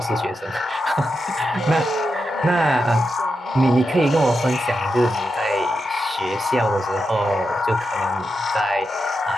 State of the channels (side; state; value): both; normal; correlation 0.87